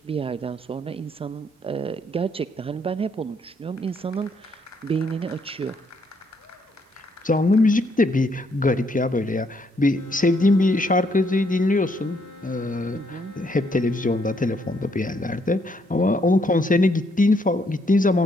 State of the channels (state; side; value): normal; both; correlation 0.72